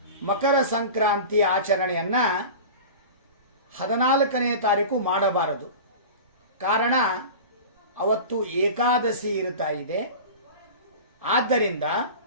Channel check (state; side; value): inverted; both; correlation -0.33